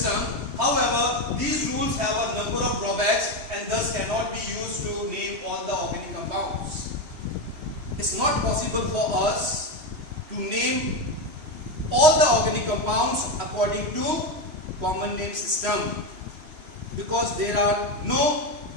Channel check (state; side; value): late; left; 3.0 ms